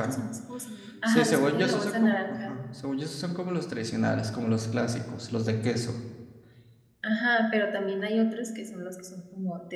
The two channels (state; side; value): identical; both; correlation 1.00